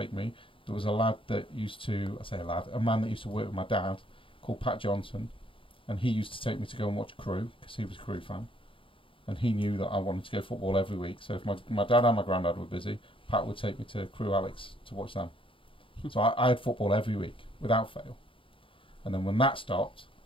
me, there was a lad that used to, I say a lad, a man that used to work with my dad called Pat Johnson, and he used to take me to go and watch Crew because he was a Crew fan, and he knew that I wanted to go football every week. So if my dad and my granddad were busy, Pat would take me to Crew Alex to watch them. So I had football every week without fail. And then when that stopped,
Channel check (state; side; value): late; right; 0.25 ms